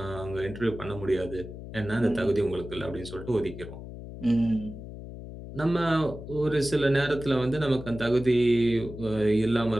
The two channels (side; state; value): left; noise; hum, 12 dB below the sound